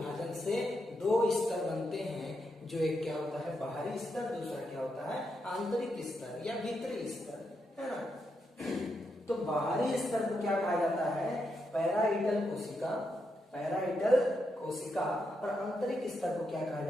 से दो स्तर बनते हैं, जो एक क्या होता है बाहरी स्तर, दूसरा क्या होता है आंतरिक स्तर या भीतरी स्तर, है ना। तो बाहरी स्तर को क्या कहा जाता है, पैराइडल कोशिका, पैराइडल कोशिका, और आंतरिक स्तर को क्या कहा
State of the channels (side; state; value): both; normal; correlation 0.82